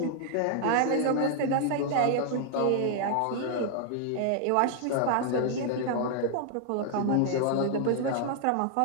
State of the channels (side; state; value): both; different; correlation 0.00